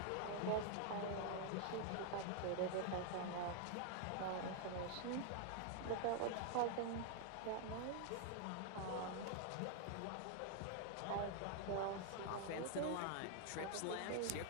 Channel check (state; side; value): different; both; correlation 0.00